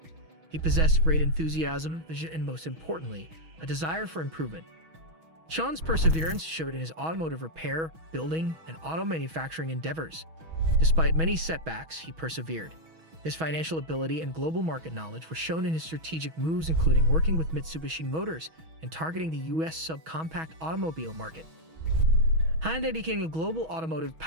He possessed great enthusiasm, vision, and most importantly, a desire for improvement. Chang's perseverance showed in his automotive repair, building, and auto manufacturing endeavors. Despite many setbacks, he persevered. His financial ability and global market knowledge were shown in his strategic moves, including working with Mitsubishi Motors and targeting the US subcompact automobile market. Hyundai became a global automotive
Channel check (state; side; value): late; left; 6.2 ms